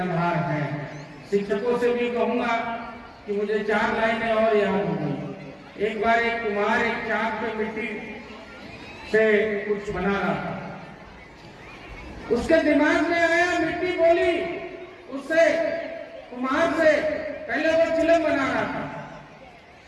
हैं। शिक्षकों से भी कहूंगा कि मुझे 4 लाइनें और याद हो गई। एक बार एक कुम्हार एक चाक पे मिट्टी से कुछ बना रहा था। उसके दिमाग में आया, मिट्टी बोली उससे, कुम्हार से, पहले वो चिलम बना रहा था।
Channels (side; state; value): both; identical; correlation 1.00